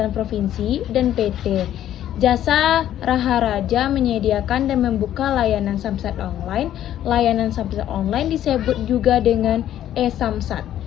Provinsi, dan PT. Jasa Raharaja menyediakan dan membuka layanan Samsat online. Layanan Samsat online disebut juga dengan e-Samsat.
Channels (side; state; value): right; quieter; 11.7 dB